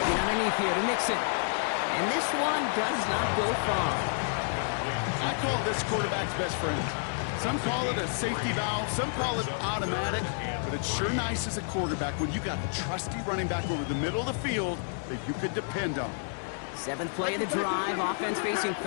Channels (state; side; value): silent; right; digital silence